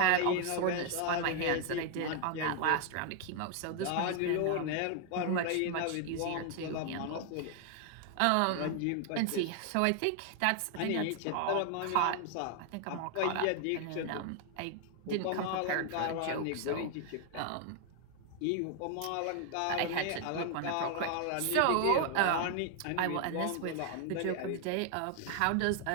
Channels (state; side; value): different; both; correlation 0.00